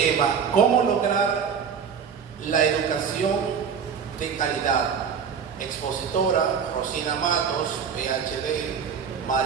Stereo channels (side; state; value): left; quieter; 6.8 dB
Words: ¿cómo lograr la educación de calidad? Expositora Rosina Matos, PhD,